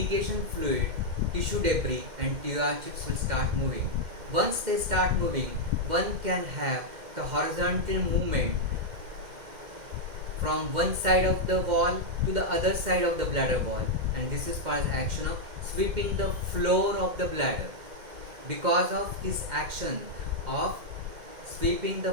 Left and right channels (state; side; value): late; left; 2.1 ms